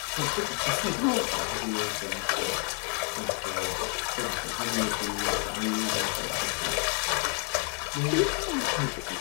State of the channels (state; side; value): quieter; right; 38.3 dB